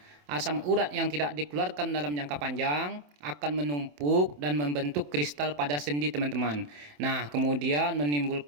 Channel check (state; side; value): late; left; 27 ms